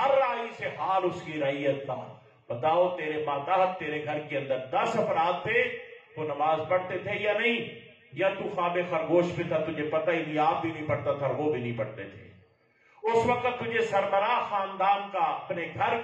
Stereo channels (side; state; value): both; identical; correlation 1.00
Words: رائی سے حال اس کی رعیت کا. بتاؤ تیرے ماتحت تیرے گھر کے اندر 10 افراد تھے، وہ نماز پڑھتے تھے یا نہیں؟ یا تو خواب خرگوش پہ تھا، تجھے پتہ ہی نہیں، آپ بھی نہیں پڑھتا تھا، وہ بھی نہیں پڑھتے تھے. اس وقت تجھے سربراہ خاندان کا، اپنے گھر